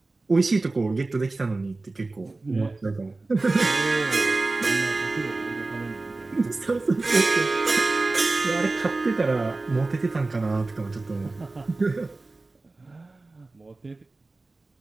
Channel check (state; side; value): quieter; left; 3.3 dB